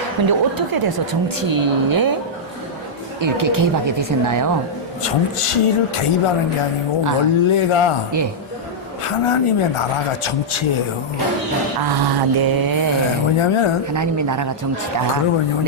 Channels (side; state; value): both; normal; correlation -0.07